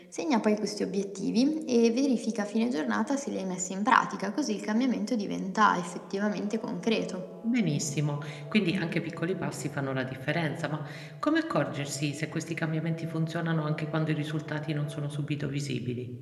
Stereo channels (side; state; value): both; identical; correlation 1.00